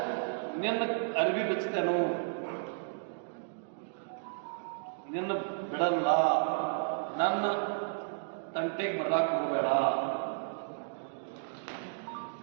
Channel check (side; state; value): left; silent; digital silence